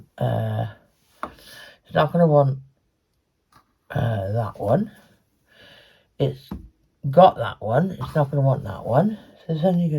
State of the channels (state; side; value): identical; both; correlation 1.00